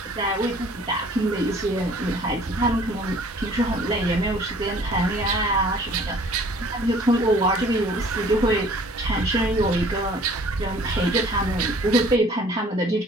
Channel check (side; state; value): both; normal; correlation 0.53